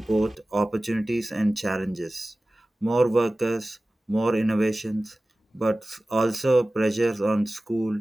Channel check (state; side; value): normal; both; correlation 0.97